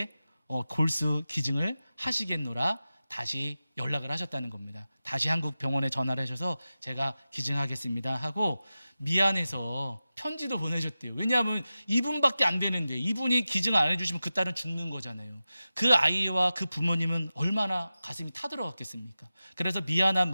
골수 기증을 하시겠노라 다시 연락을 하셨다는 겁니다. 다시 한국 병원에 전화를 하셔서 제가 기증하겠습니다 하고 미안해서 편지도 보내셨대요. 왜냐하면 이분밖에 안 되는데 이분이 기증 안 해주시면 그 딸은 죽는 거잖아요. 그 아이와 그 부모님은 얼마나 가슴이 타들어갔겠습니까? 그래서 미안한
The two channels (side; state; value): both; inverted; correlation -0.94